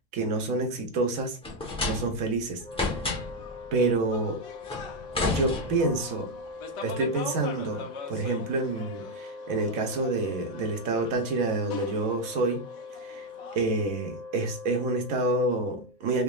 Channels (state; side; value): normal; both; correlation 0.04